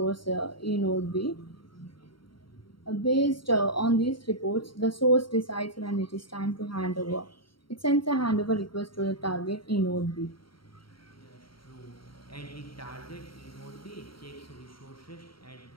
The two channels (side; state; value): right; late; 0.74 ms